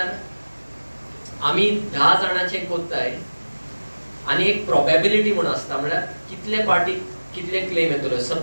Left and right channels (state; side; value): inverted; both; correlation -1.00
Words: आमी 10 जाणांचे कोत्ताय आनी एक प्रोबेबिलिटी म्हण आसता, म्हळ्यार कितले पार्टी कितले क्लेम येतलो।